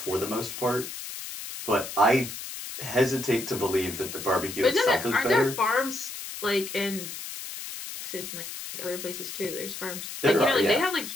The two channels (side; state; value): left; noise; hiss, 9 dB below the sound